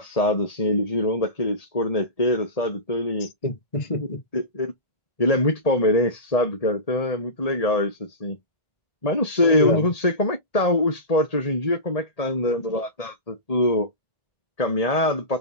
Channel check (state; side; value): late; right; 1.8 ms